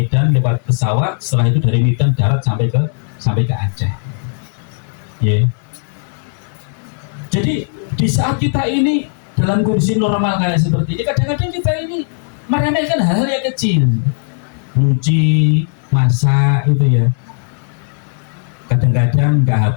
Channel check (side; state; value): right; silent; digital silence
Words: lewat pesawat, setelah itu dari Medan darat sampai ke Aceh. Jadi di saat kita ini dalam kondisi normal kayak seperti ini, kadang-kadang kita ini meremehkan hal-hal yang kecil, nyuci, masak itu ya, kadang-kadang nggak